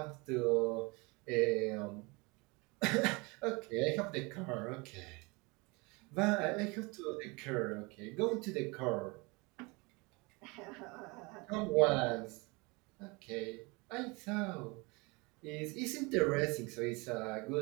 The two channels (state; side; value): quieter; left; 26.9 dB